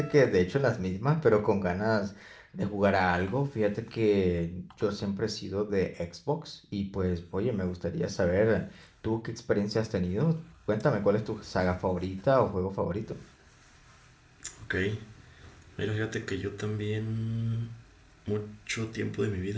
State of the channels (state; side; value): identical; both; correlation 1.00